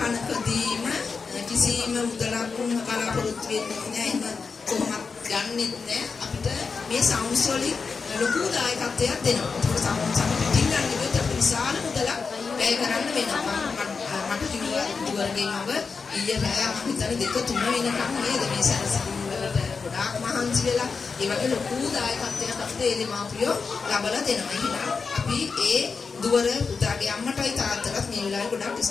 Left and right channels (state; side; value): quieter; right; 5.0 dB